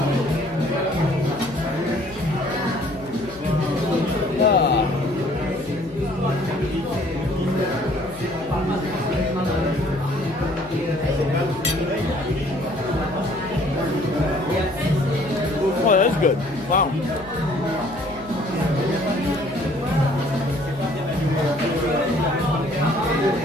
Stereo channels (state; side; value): noise; left; hum, 19 dB below the sound